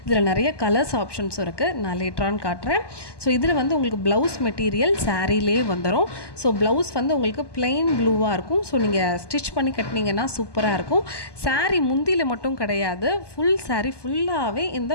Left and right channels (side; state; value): right; late; 1.2 ms